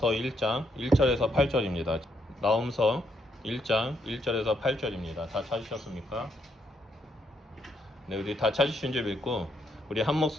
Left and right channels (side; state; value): both; normal; correlation 0.75